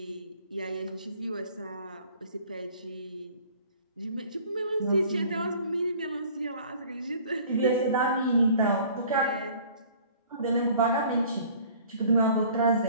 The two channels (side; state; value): both; inverted; correlation -0.51